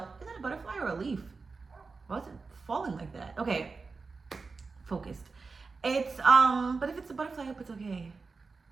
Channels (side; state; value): left; quieter; 4.3 dB